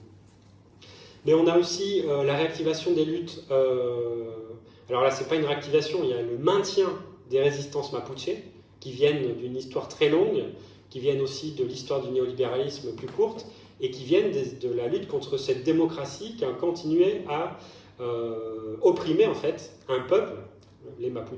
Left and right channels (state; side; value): identical; both; correlation 1.00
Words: Mais on a aussi la réactivation des luttes. Alors là, c'est pas une réactivation, il y a le maintien des résistances mapuche qui viennent d'une histoire très longue, qui viennent aussi de l'histoire du néolibéralisme plus courte, et qui viennent de la lutte contre cette démocratie qui a continué à opprimer en fait un peuple, les